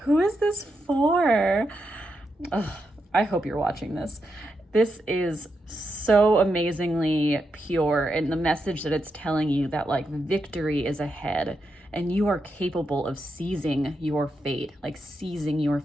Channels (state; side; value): normal; both; correlation 0.85